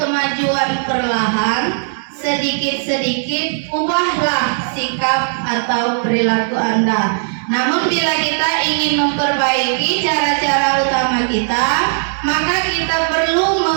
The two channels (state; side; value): silent; left; digital silence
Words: kemajuan perlahan, sedikit-sedikit ubahlah sikap atau perilaku Anda. Namun bila kita ingin memperbaiki cara-cara utama kita, maka kita perlu